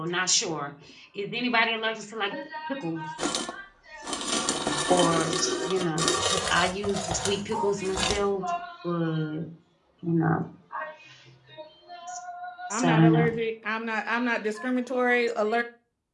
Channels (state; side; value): identical; both; correlation 1.00